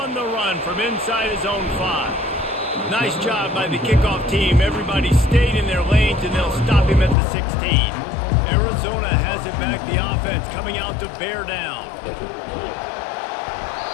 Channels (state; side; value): drops out; right; at 7.2 s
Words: the run from inside his own 5. Nice job by the kickoff team. Everybody stayed in their lanes, and they'll stop him at the 16. Arizona has it back. The offense coming out to bear down.